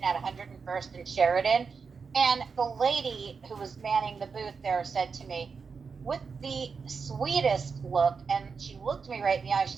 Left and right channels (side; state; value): left; quieter; 5.4 dB